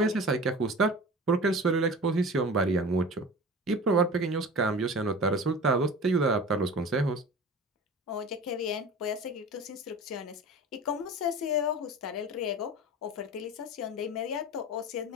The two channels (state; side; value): normal; both; correlation 0.36